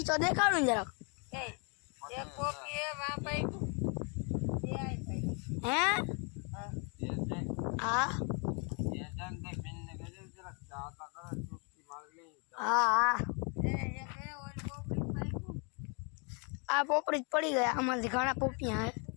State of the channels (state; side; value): quieter; right; 35.9 dB